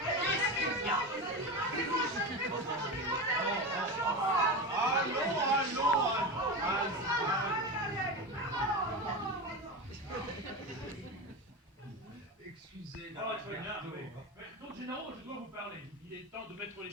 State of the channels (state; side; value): normal; both; correlation 0.22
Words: Qu'est-ce qu'il y a? Excusez. Oh, très bien, oui. Donc, généraux, je dois vous parler. Il est temps de mettre les